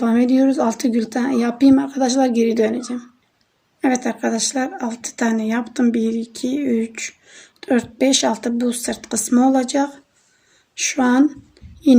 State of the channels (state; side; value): identical; both; correlation 1.00